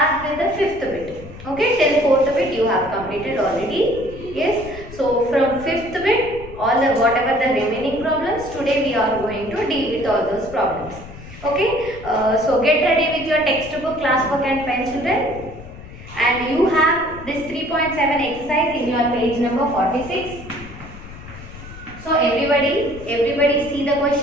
with the fifth bit. Okay, till fourth bit you have completed already. Yes. So from fifth bit, all the whatever the remaining problems, today we are going to deal with all those problems. Okay. So get ready with your textbook, class book and pen, children. And you have this 3.7 exercise in your page number 46. So everybody see the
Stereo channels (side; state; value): left; noise; rumble, 15 dB below the sound